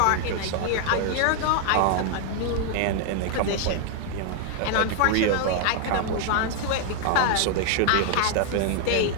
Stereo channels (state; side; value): different; both; correlation 0.00